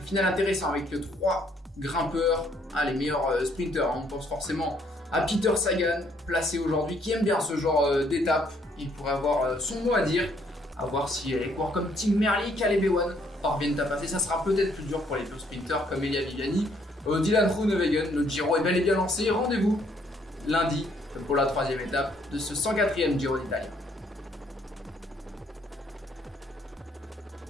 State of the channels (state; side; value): normal; both; correlation 0.67